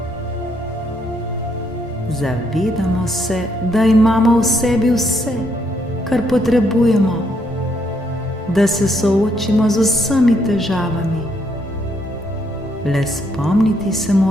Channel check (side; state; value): both; normal; correlation 0.73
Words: Zavedamo se, da imamo v sebi vse, kar potrebujemo, da se soočimo z vsemi težavami. Le spomniti se